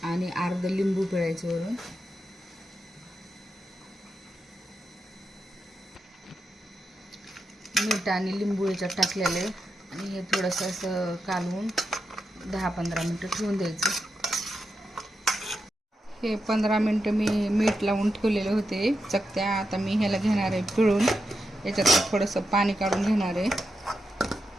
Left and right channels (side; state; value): both; normal; correlation 0.87